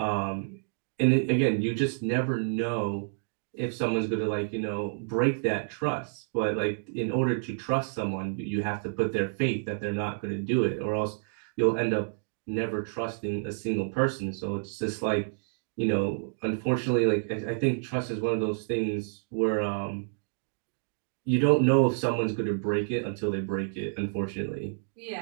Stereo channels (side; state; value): left; silent; digital silence